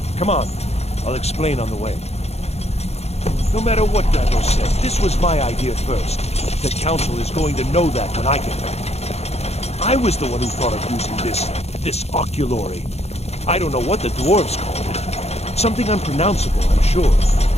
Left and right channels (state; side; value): late; right; 0.31 ms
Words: Come on, I'll explain on the way. No matter what Gavros said, this was my idea first. The Council is going to know that when I get back. I was the one who thought of using this oculory. I don't know what the dwarves called it. Something unpronounceable, I'm sure.